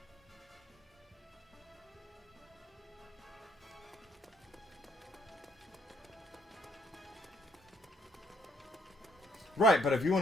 Right, but if you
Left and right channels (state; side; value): normal; both; correlation 0.69